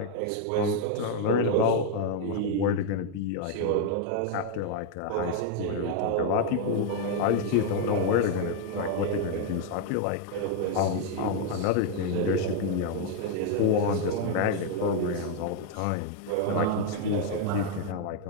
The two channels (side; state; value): both; different; correlation 0.00